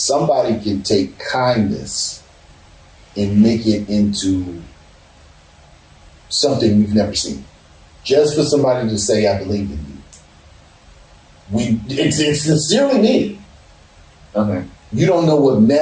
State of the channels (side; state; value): both; identical; correlation 1.00